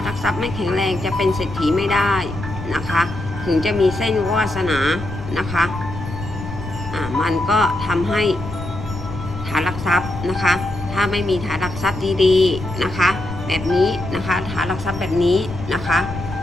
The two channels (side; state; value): left; noise; rumble, 9 dB below the sound